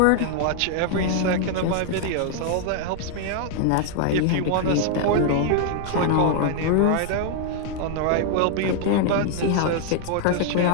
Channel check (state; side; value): different; both; correlation 0.00